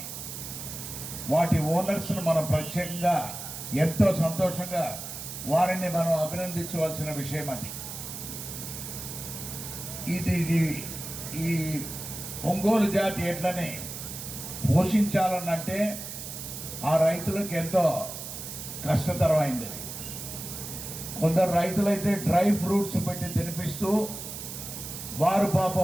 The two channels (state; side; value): noise; right; hiss, 9 dB below the sound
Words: వాటి ఓనర్స్ను మనం ప్రత్యేకంగా ఎంతో సంతోషంగా వారిని మనం అభినందించవలసిన విషయం అది. ఇది ఈ ఒంగోలు జాతి ఎడ్లని పోషించాలనంటే ఆ రైతులకు ఎంతో కష్టతరమైంది. కొందరు రైతులైతే డ్రై ఫ్రూట్స్ పెట్టి తినిపిస్తూ వారు